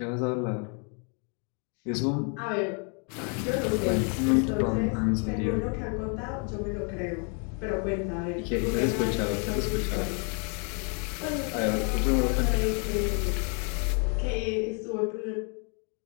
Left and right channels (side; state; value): right; quieter; 38.8 dB